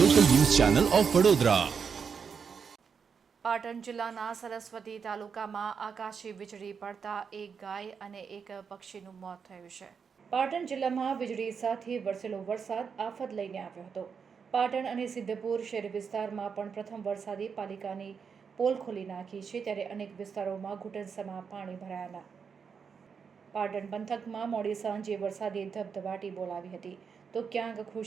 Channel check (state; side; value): quieter; left; 6.2 dB